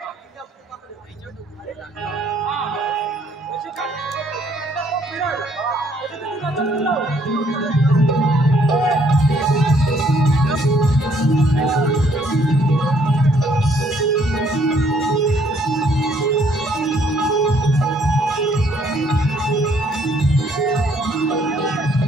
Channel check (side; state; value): both; normal; correlation 0.65